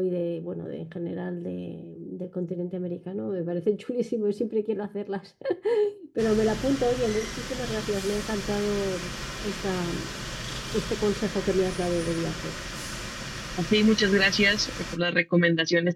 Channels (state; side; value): identical; both; correlation 1.00